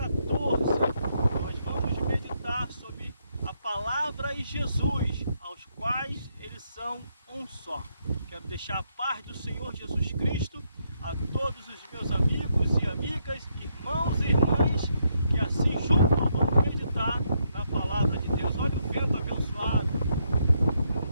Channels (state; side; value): inverted; both; correlation -0.77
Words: Nós vamos meditar sobre a palavra e Jesus, aos quais eles são um só. Quero deixar a paz do Senhor Jesus Cristo a todos os meus amigos e amigas, irmãos e irmãs, que assim juntos vamos meditar na palavra de Deus. Olha o vento abençoado.